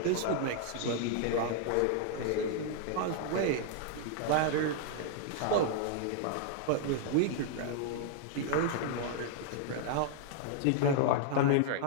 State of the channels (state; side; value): different; both; correlation 0.00